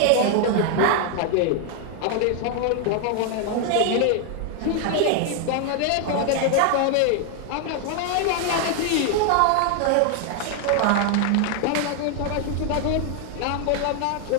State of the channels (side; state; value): both; different; correlation 0.00